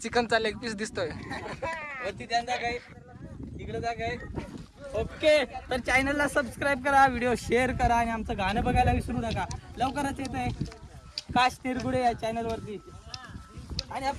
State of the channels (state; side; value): identical; both; correlation 1.00